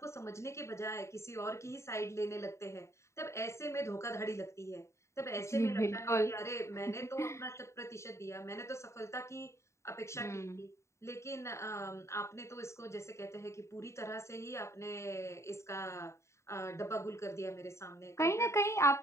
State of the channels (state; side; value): late; right; 0.14 ms